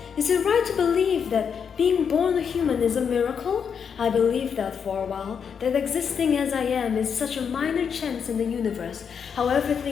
Is it right to believe that being born a human is a miracle? I believed that for a while, that existing as I am is such a minor chance in the universe, how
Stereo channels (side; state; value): right; quieter; 6.9 dB